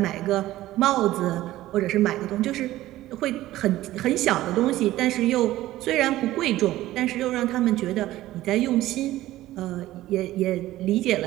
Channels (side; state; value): left; quieter; 15.5 dB